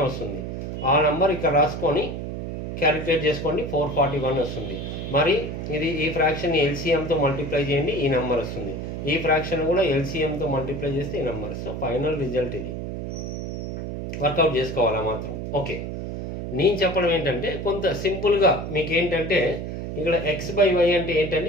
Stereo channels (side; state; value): right; noise; hum, 6 dB below the sound